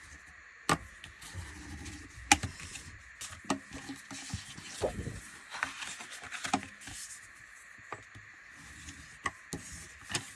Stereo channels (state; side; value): identical; both; correlation 1.00